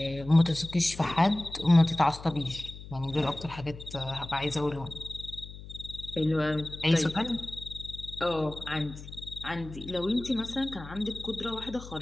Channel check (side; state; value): left; noise; hum, 14 dB below the sound